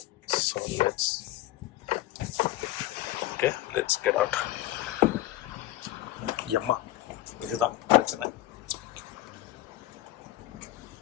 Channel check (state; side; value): quieter; right; 15.6 dB